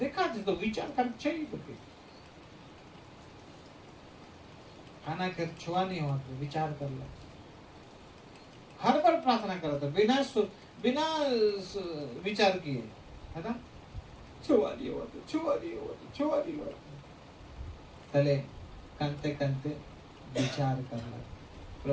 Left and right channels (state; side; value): identical; both; correlation 1.00